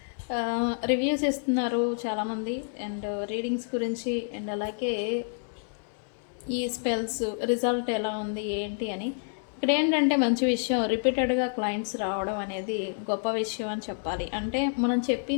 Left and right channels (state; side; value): silent; right; 59 dB below the other